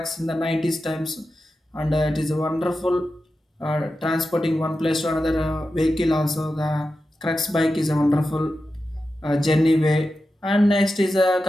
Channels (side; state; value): both; normal; correlation 0.91